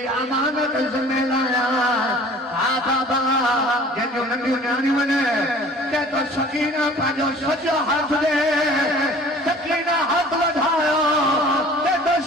अमानत में लाया हाँ बाबा जो नंढियों न्याणी बने कहता सकीना पाजो सचो हाथ दे सकीना हाथ बढ़ायो कहता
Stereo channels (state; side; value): normal; both; correlation 0.48